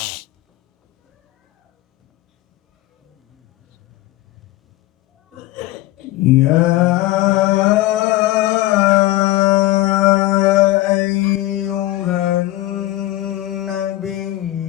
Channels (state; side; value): quieter; right; 16.8 dB